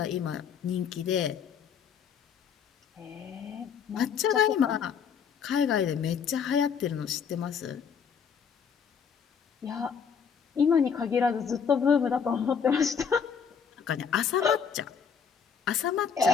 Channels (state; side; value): quieter; right; 6.9 dB